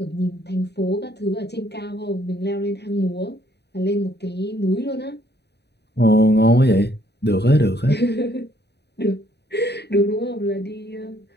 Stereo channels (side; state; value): right; late; 0.49 ms